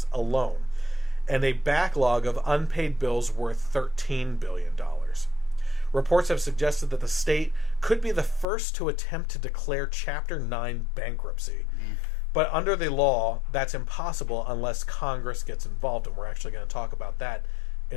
alone, and a backlog of unpaid bills worth $13 billion. Reports have suggested that the state could be the first to attempt to declare Chapter 9 bankruptcy. But under the law, that's impossible unless Congress gets involved, and we're actually going to talk about that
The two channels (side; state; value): right; drops out; at 8.5 s